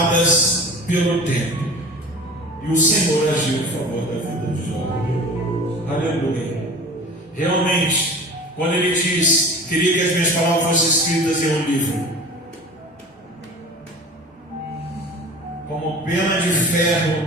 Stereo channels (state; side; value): normal; both; correlation 0.39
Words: pelo tempo. E o Senhor agiu em favor da vida de Jó. Aleluia. Realmente, quando ele diz: queria que as minhas palavras fossem escritas em um livro, como pena de